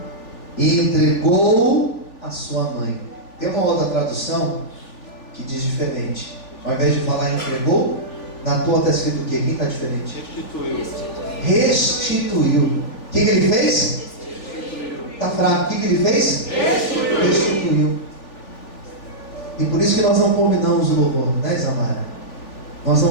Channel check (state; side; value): late; right; 3.4 ms